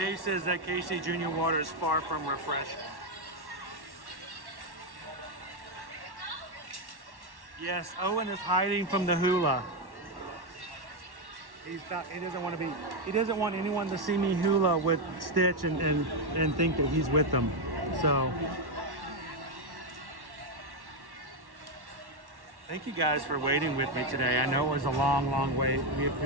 says that KC Junior water is far from refreshing. Yes, Owen is hiding from the Hula. He doesn't want to be. He doesn't want anyone to see me Hula with Stitch and think that he's with them. So, thank you guys for waiting with me today. I know it was a long, long wait. We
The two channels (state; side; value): late; left; 1.1 ms